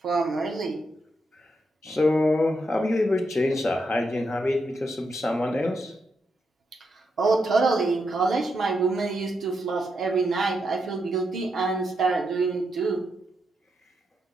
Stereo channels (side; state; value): both; normal; correlation 0.82